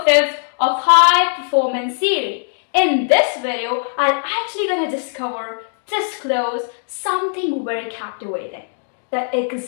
5 of High Performance Theory. In this video, I'm actually going to disclose something very captivating. The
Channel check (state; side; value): silent; right; digital silence